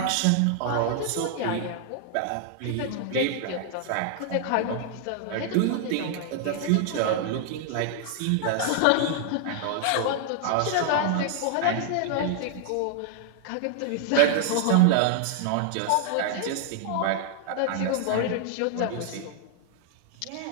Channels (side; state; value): both; different; correlation 0.00